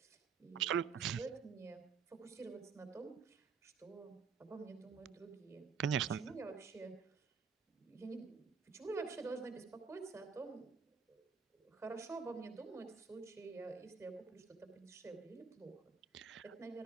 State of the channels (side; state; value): left; quieter; 5.9 dB